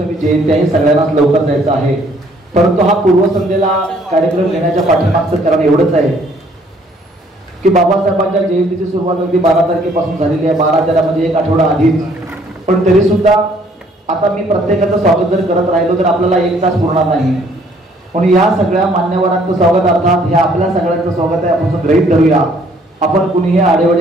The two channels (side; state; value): both; normal; correlation 0.62